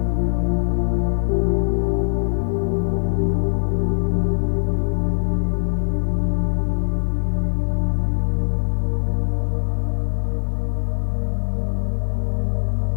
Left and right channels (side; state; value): right; silent; 65 dB below the other